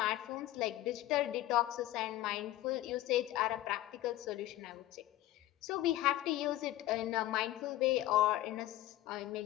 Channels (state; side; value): quieter; right; 15.3 dB